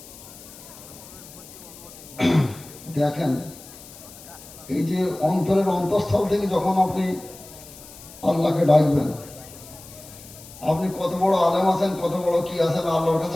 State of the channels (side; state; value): left; noise; hiss, 18 dB below the sound